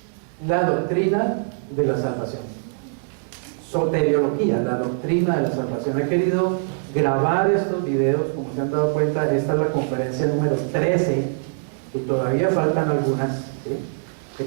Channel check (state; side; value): silent; left; 64 dB below the other